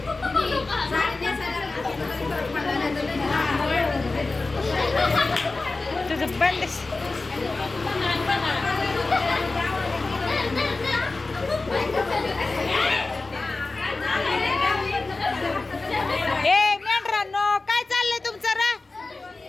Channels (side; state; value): right; quieter; 3.5 dB